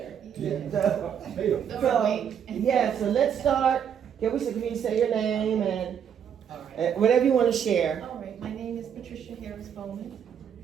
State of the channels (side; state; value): left; quieter; 8.3 dB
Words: So let's start. Can you say your name and whatever you want to share? All right, my name is Patricia Harris Bowman.